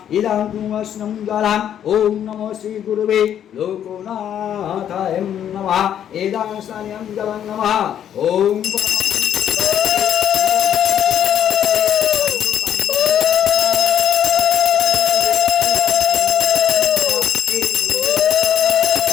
इदं पुरस्नं जलं ओम नमो श्री गुरुवे लोकनाथाय नमः इदं स्नानं जलं नमः ओम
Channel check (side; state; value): right; quieter; 9.8 dB